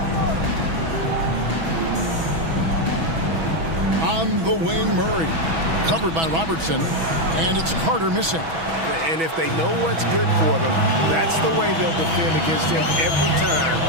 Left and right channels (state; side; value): late; left; 6.1 ms